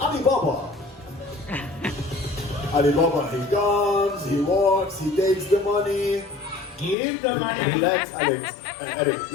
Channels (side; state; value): right; drops out; at 7.0 s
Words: Alibaba, he comes, he walks, he takes the money. Give the money. Relax, Alex. Eric.